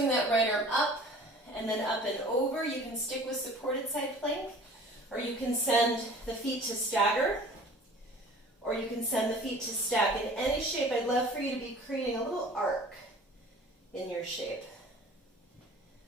that right arm up and then up and over. You can stick with supported side plank, or you can send the feet to stagger, or you can send the feet to stack. In any shape, I'd love for you to be creating a little arc in your shape.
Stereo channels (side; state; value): both; normal; correlation 0.46